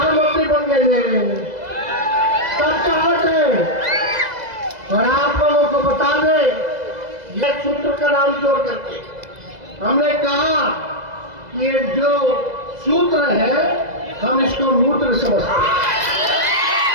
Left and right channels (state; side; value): late; left; 2.0 ms